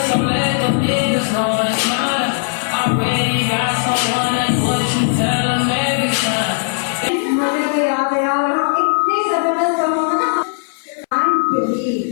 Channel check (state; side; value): silent; right; 63 dB below the other